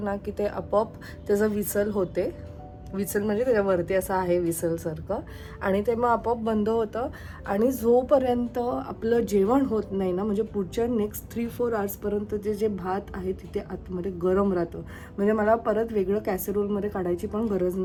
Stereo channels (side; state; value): both; identical; correlation 1.00